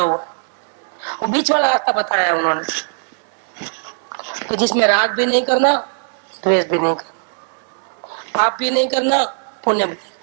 वो बीच वाला रास्ता बताया है उन्होंने कि जिसमें राग भी नहीं करना, द्वेष भी नहीं करना, पाप भी नहीं करना, पुण्य भी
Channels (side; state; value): left; silent; 66 dB below the other